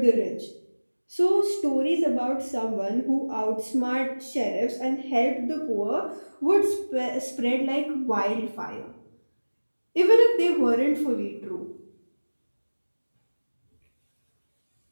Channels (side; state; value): both; inverted; correlation -1.00